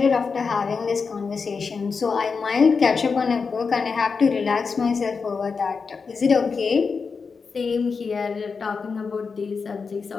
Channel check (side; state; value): right; quieter; 5.1 dB